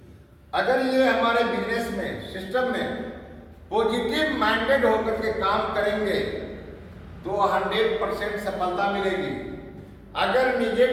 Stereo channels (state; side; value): identical; both; correlation 1.00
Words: अगर ये हमारे बिजनेस में सिस्टम में पॉजिटिव माइंडेड होकर के काम करेंगे तो 100% सफलता मिलेगी। अगर